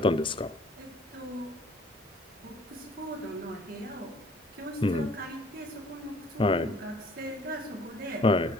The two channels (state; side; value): normal; both; correlation 0.56